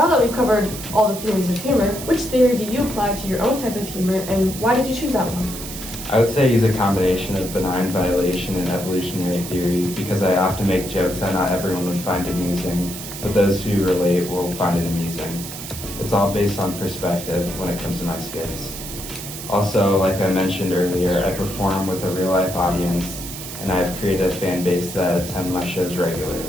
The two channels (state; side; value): noise; right; hiss, 10 dB below the sound